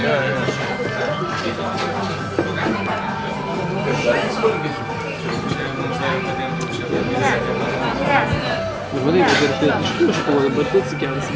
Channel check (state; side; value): identical; both; correlation 1.00